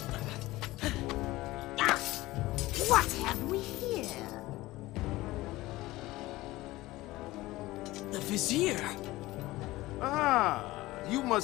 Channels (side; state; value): right; quieter; 18.4 dB